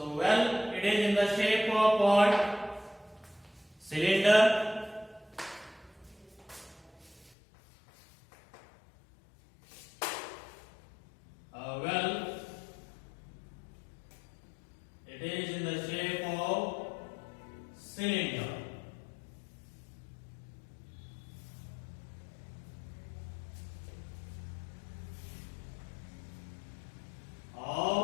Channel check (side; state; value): right; drops out; at 7.4 s